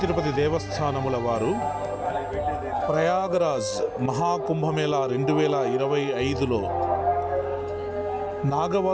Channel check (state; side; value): identical; both; correlation 1.00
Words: తిరుపతి దేవస్థానముల వారు ప్రయాగరాజ్ మహాకుంభమేళా 2025లో